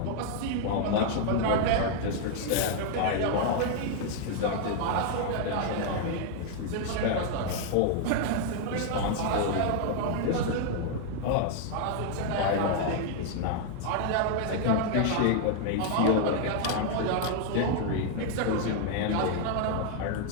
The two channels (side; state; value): both; different; correlation 0.00